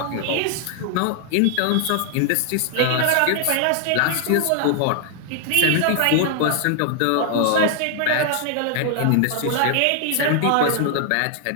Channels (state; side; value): different; both; correlation 0.00